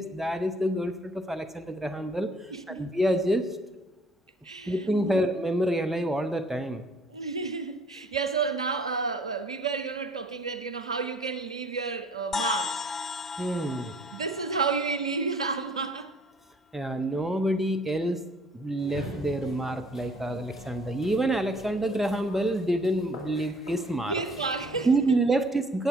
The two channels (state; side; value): normal; both; correlation 0.56